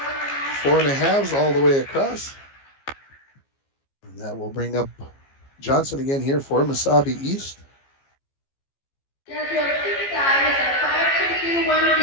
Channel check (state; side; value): late; right; 15 ms